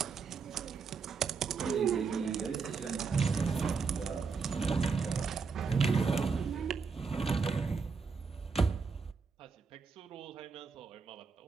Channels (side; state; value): left; quieter; 5.2 dB